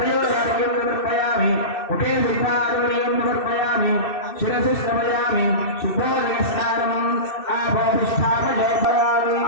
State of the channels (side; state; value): right; late; 2.6 ms